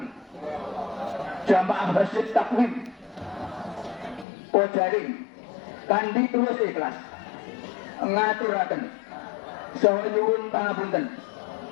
jamaah masjid takwim Pojaring kanthi tulus ikhlas ngaturaken saha nyuwun pangapunten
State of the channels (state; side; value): drops out; right; at 4.2 s